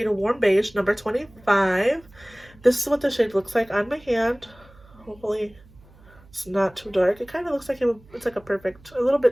Warm Beige, number 25. This is what the shade looks like on my hand. Hopefully it's not too dark. It kind of looks like it's like a little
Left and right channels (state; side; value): noise; right; hum, 26 dB below the sound